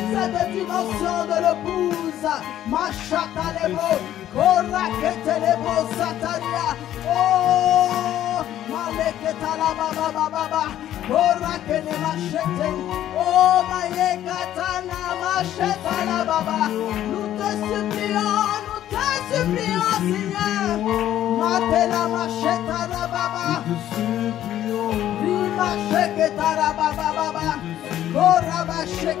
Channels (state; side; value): quieter; right; 12.0 dB